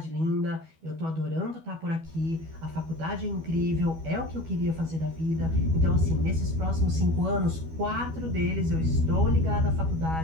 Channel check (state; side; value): late; left; 12 ms